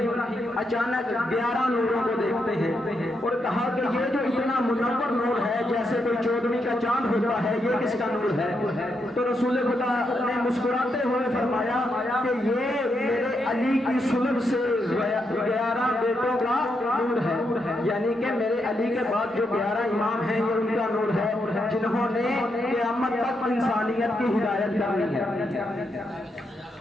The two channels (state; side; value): normal; both; correlation 0.81